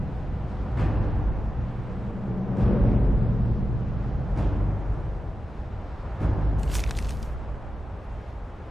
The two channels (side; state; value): both; normal; correlation 0.92